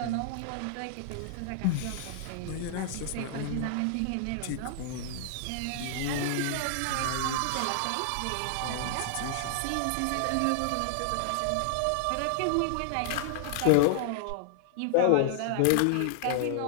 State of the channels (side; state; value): both; different; correlation -0.01